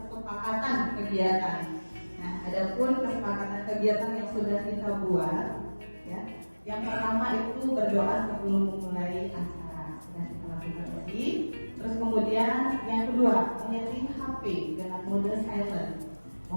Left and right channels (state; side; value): inverted; both; correlation -1.00